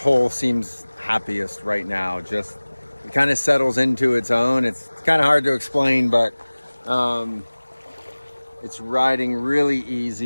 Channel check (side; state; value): both; inverted; correlation -1.00